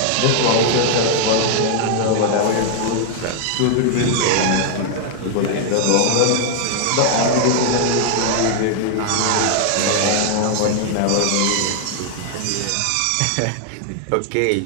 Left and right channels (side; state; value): both; different; correlation 0.00